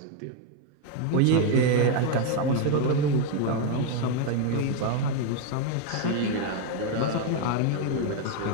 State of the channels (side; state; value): both; different; correlation 0.01